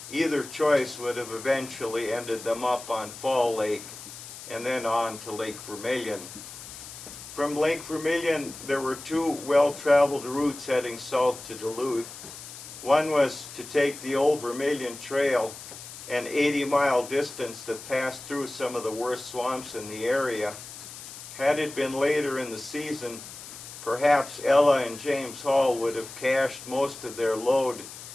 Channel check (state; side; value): noise; left; hiss, 13 dB below the sound